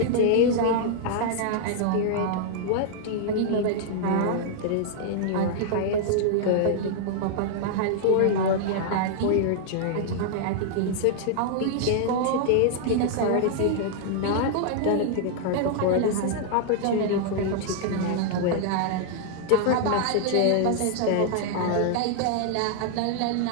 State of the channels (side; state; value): both; different; correlation -0.01